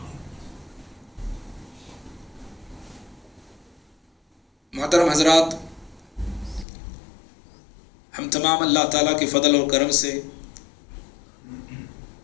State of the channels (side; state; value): right; drops out; at 6.7 s